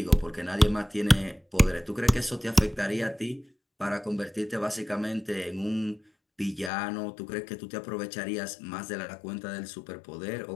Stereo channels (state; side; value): drops out; right; at 6.7 s